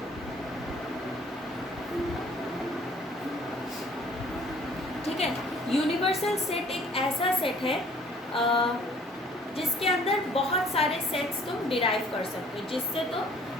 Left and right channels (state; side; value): normal; both; correlation 0.56